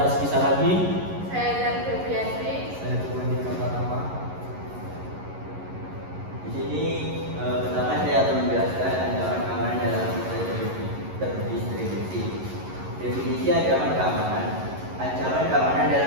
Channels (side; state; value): left; late; 11 ms